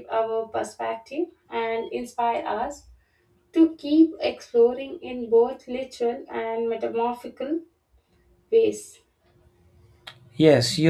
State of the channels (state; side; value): identical; both; correlation 1.00